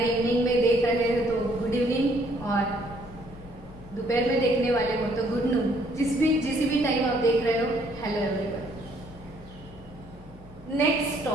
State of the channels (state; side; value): normal; both; correlation 0.65